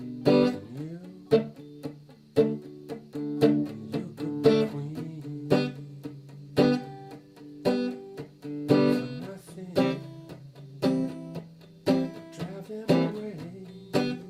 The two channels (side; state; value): both; identical; correlation 1.00